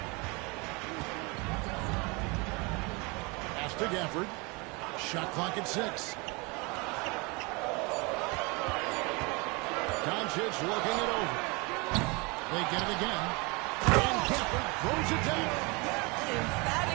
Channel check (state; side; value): quieter; left; 28.0 dB